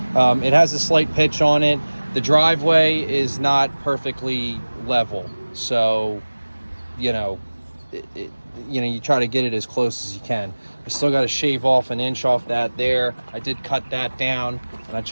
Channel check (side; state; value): both; inverted; correlation -1.00